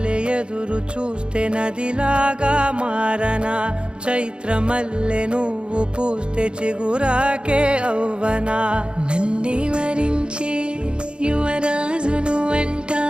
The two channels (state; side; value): late; left; 0.054 ms